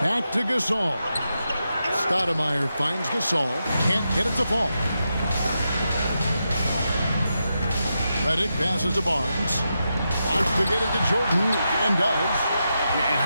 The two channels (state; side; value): inverted; both; correlation -0.87